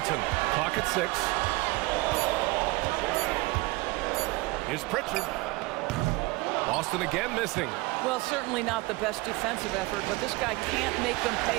Clock at 6. Here's Pritchard. Boston again missing. Well, certainly not the best defensive effort, but this guy can't make them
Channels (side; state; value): left; quieter; 23.2 dB